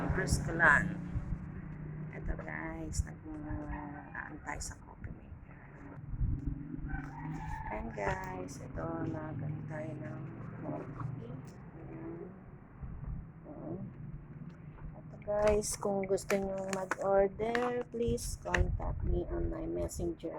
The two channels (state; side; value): identical; both; correlation 1.00